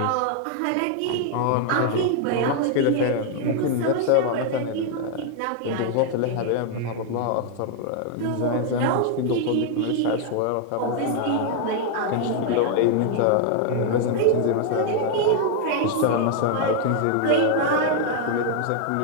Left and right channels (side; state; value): both; different; correlation 0.00